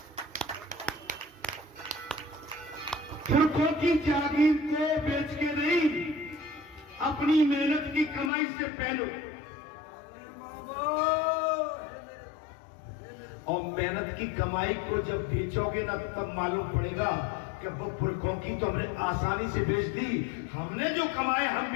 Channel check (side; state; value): right; drops out; at 8.3 s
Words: पुरखों की जागीर को बेच के नहीं, अपनी मेहनत की कमाई से पहनो। और मेहनत की कमाई को जब बेचोगे ना, तब मालूम पड़ेगा कि वो पुरखों की तो हमने आसानी से बेच दी, हमने जो कमाए हम